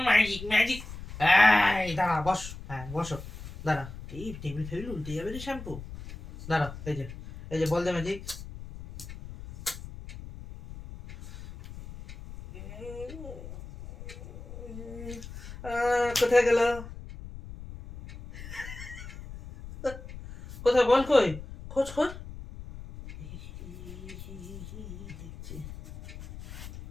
ম্যাজিক ম্যাজিক। এই দাঁড়া, বস। হ্যাঁ বসো, দাঁড়া। এই টেবিল ফেবিল উল্টে যাবে রে শ্যাম্পু। দাঁড়া, এই যে বল দিয়ে ম্যাজিক। কোথায় গেল? কোথায় বল? কই? খোঁজ খোঁজ। দেখছি।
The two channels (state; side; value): noise; left; rumble, 12 dB below the sound